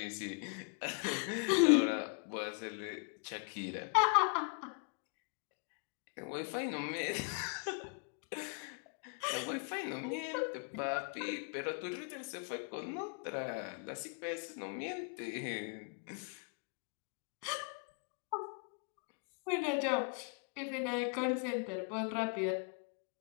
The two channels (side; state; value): right; quieter; 38.5 dB